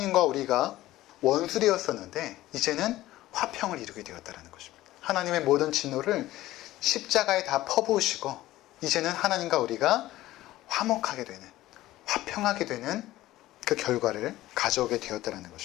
우리가 원수되었었는데 이제는 화평을 이루게 되었다는 것입니다. 하나님의 모든 진노를 십자가에 다 퍼부으시고 이제는 하나님과 우리가 화목하게 되는, 화평하게 되는 그 결과를 가져오게 되었다는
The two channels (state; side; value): quieter; right; 15.9 dB